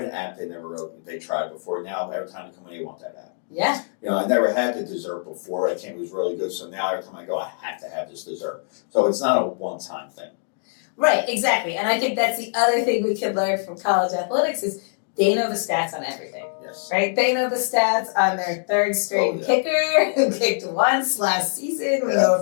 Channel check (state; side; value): silent; right; digital silence